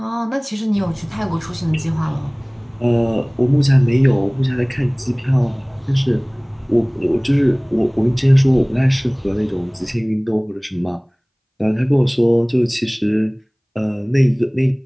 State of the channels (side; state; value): both; identical; correlation 1.00